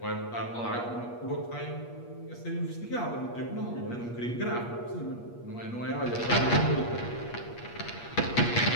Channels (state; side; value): late; right; 8.4 ms